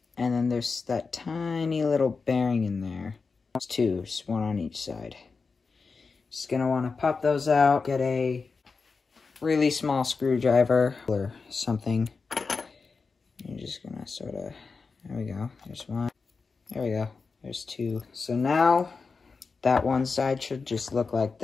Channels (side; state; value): right; quieter; 4.6 dB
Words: And then there's that tiny little bearing in there. There's two, just one on each side. Just going to want to pop those out. Get a really small screwdriver or something. You're just gonna sort of, there we go, there's one, there we go, there's two. So now, that one side should just look like